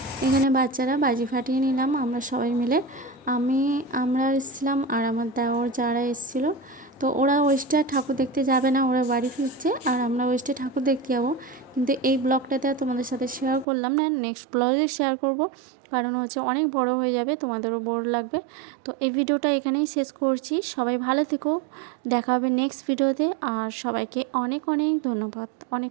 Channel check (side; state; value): left; drops out; at 13.7 s